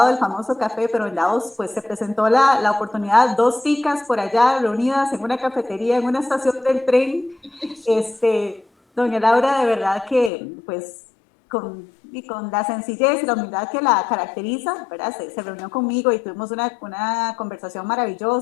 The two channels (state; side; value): drops out; right; at 10.3 s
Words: del famoso café, pero en Davos pues se presentó la oportunidad, 2 chicas por allá reunidas en una cafetería, en una estación del tren. Doña Laura, de verdad que pues con la sencillez y la humildad que la caracteriza, ¿verdad? Se reunió conmigo y tuvimos una conversación